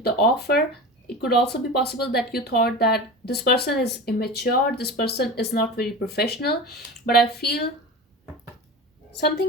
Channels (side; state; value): both; normal; correlation 0.30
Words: the offer. It could also be possible that you thought that this person is immature, this person is not very professional. But I feel